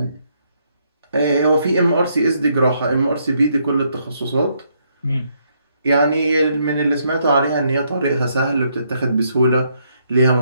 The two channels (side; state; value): both; inverted; correlation -0.74